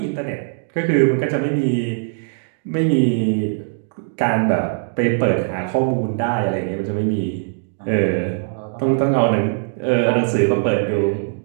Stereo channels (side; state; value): left; silent; digital silence